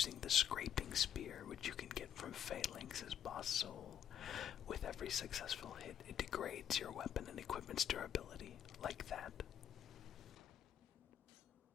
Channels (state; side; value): quieter; right; 9.7 dB